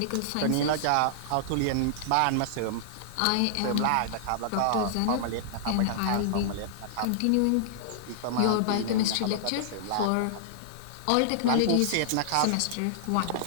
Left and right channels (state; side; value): different; both; correlation -0.01